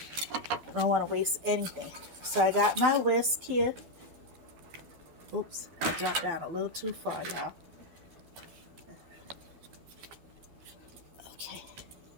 I don't want to waste anything. So I got my whisk here. Oops, I dropped down a little too far, y'all. Okay.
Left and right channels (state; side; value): late; left; 12 ms